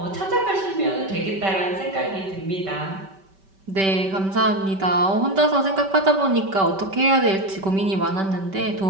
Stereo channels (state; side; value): late; left; 5.2 ms